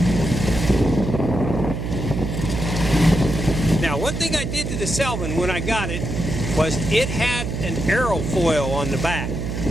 Now, one thing I did to the Sylvan when I got it was it had an aerofoil on the back.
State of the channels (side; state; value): right; noise; hum, 4 dB below the sound